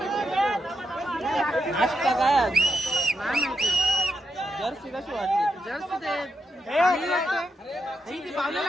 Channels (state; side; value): normal; both; correlation 0.83